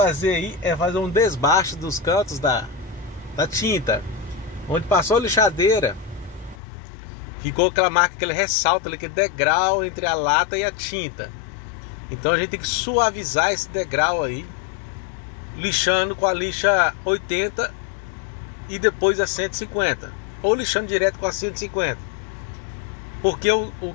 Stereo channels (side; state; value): right; drops out; at 6.6 s